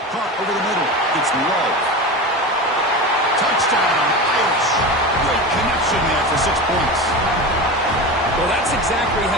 Caught over the middle. It's low. Touchdown, Irish. Great connection there for 6 points. Well, that's exactly how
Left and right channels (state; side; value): normal; both; correlation 0.26